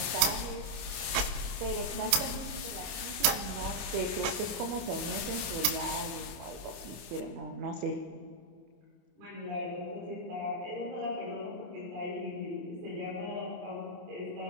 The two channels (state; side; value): late; left; 28 ms